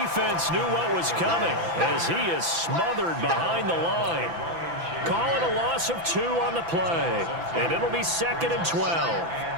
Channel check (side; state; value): left; late; 6.0 ms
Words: knew what was coming as he is smothered behind the line. Calling a loss of 2 on the play, and it'll be 2nd and 12.